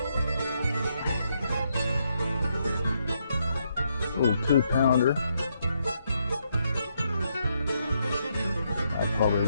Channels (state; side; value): inverted; both; correlation -0.77